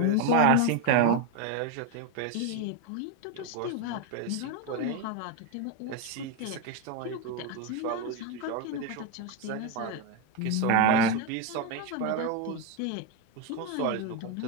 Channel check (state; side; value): different; both; correlation 0.02